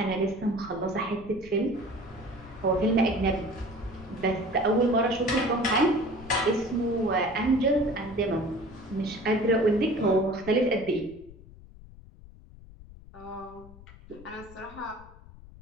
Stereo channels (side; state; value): left; noise; rumble, 19 dB below the sound